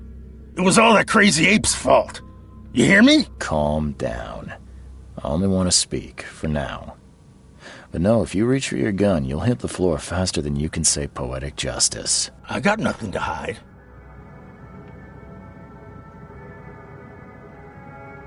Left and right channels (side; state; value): both; identical; correlation 1.00